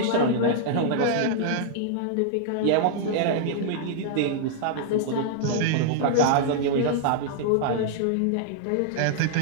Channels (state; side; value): different; both; correlation -0.01